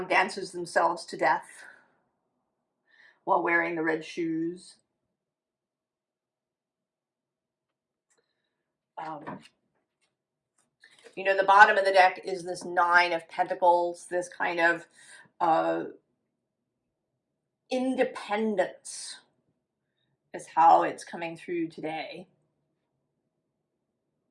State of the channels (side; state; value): both; identical; correlation 1.00